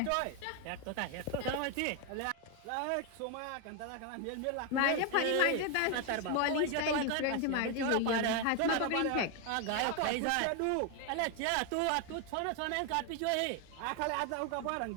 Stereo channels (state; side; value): different; both; correlation 0.01